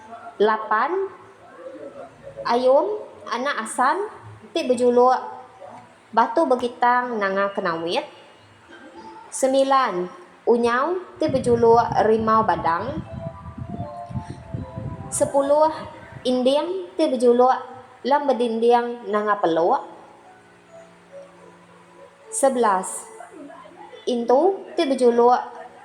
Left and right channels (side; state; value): both; identical; correlation 1.00